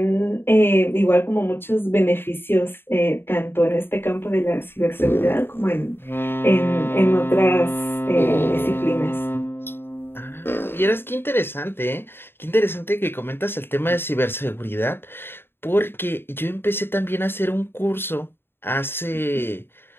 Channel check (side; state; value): right; late; 0.11 ms